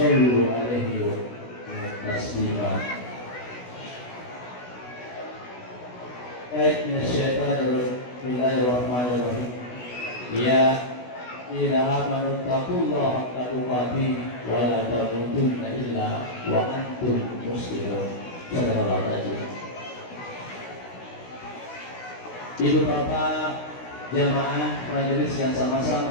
'alaihi wa taslima. Bismillahirrahmanirrahim. Ya ila amanu taqullaha haqqa tuqatih wa la tamutunna illa wa antum muslimun. Sallallahu alaihi wasallam. Ibu bapak jamaah majelis yang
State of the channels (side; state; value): right; late; 16 ms